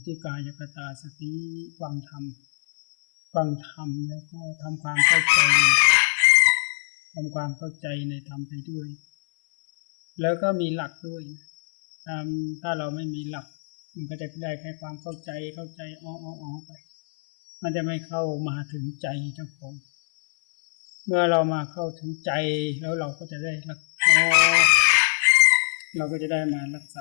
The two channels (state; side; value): silent; right; 57 dB below the other